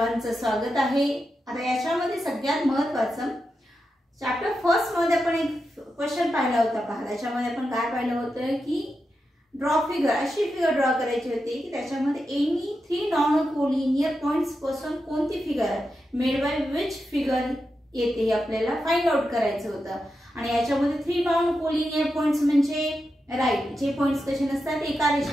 स्वागत आहे। आता याच्यामध्ये सगळ्यात महत्त्वाचं चॅप्टर फर्स्ट मध्ये आपण एक क्वेश्चन पाहिला होता। पहा, त्याच्यामध्ये आपण काय पाहिलं होतं की ड्रॉ फिगर, अशी फिगर ड्रॉ करायची होती की त्याच्यामध्ये एनी 3 नॉन कोलिनियर पॉइंट्स पासून कोणती figure made by which figure येते हे आपल्याला फाइंड आउट करायचं होतं। आणि याच्यामध्ये 3 नॉन कोलिनियर पॉइंट्स म्हणजे राइट, जे पॉइंट्स कसे नसतात एका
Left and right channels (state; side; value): normal; both; correlation 0.88